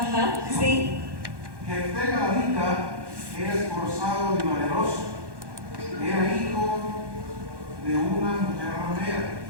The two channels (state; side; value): late; left; 1.1 ms